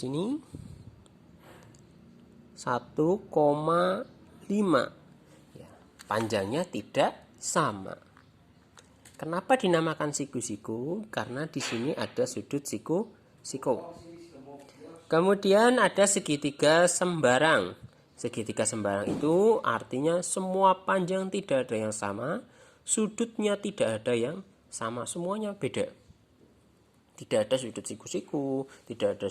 1,5. Ya, panjangnya tidak sama. Kenapa dinamakan siku-siku? Karena di sini ada sudut siku-siku. Kemudian ada segitiga sembarang. Segitiga sembarang itu artinya semua panjang tidak ada yang sama, sudutnya tidak ada yang sama, semuanya beda. Tidak ada sudut siku-siku, tidak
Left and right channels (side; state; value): both; identical; correlation 1.00